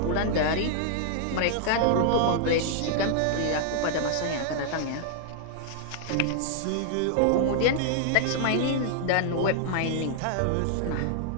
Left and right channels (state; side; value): different; both; correlation -0.01